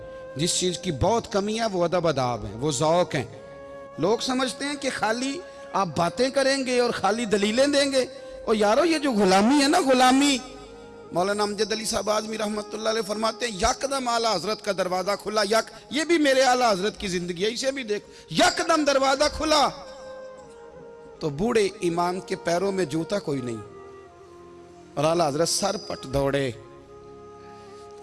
जिस चीज़ की बहुत कमी है वो अदब अदाब है, वो ज़ौक़ हैं। लोग समझते हैं कि खाली आप बातें करेंगे और खाली दलीलें देंगे। और यारो ये जो गुलामी है ना, गुलामी, मौलाना अमजद अली साहब आज़मी रहमतुल्लाह अलैह फरमाते हैं यकदम आला हजरत का दरवाज़ा खुला। ये भी मेरे आला हजरत की जिंदगी है, इसे भी देखो। यकदम दरवाज़ा खुला तो बूढ़े इमाम के पैरों में जूता कोई नहीं, और आला हजरत सर पट दौड़े।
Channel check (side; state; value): both; identical; correlation 1.00